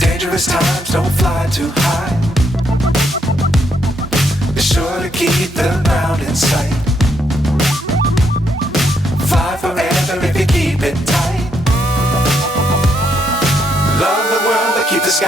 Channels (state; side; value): normal; both; correlation 0.76